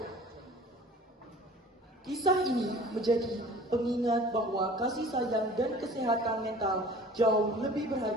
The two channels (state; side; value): normal; both; correlation 0.46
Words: Kisah ini menjadi pengingat bahwa kasih sayang dan kesehatan mental jauh lebih